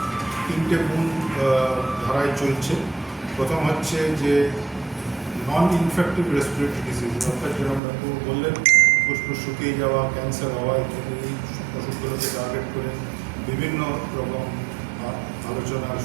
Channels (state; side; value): drops out; left; at 7.8 s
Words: 3টে মূল ধারায় চলছে। প্রথম হচ্ছে যে নন ইনফেক্টিভ রেসপিরেটরি ডিজিজ, অর্থাৎ যেরকম ডাক্তার বললেন ফুসফুস শুকিয়ে যাওয়া, ক্যান্সার হওয়া ইত্যাদি এই অসুখগুলোকে টার্গেট করে বিভিন্ন রকম আলোচনার